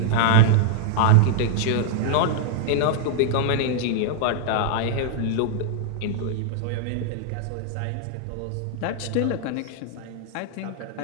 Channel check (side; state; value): both; different; correlation -0.01